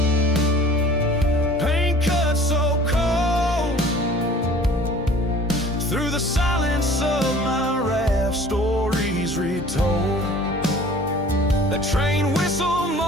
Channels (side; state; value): both; normal; correlation 0.49